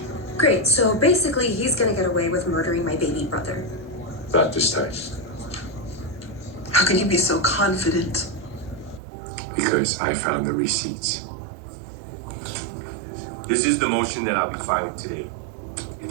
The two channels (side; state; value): left; drops out; at 9.0 s